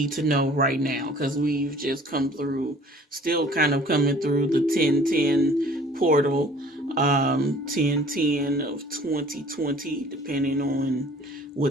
to know right now? Because we've just still kind of coming through the 1010 portal, 1010 of 2020, depending on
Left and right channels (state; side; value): normal; both; correlation 0.52